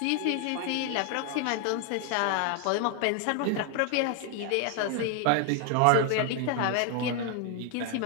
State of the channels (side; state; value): both; different; correlation 0.00